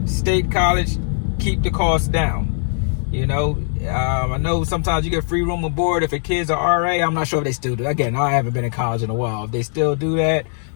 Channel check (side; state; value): right; silent; 64 dB below the other